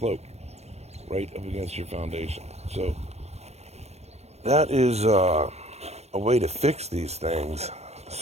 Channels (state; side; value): late; left; 0.31 ms